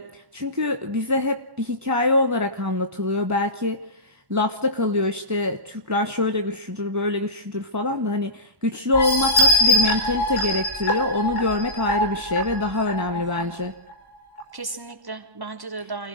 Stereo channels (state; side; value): late; left; 1.1 ms